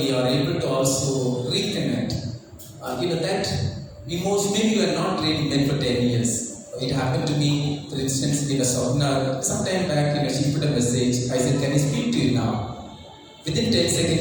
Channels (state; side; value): identical; both; correlation 1.00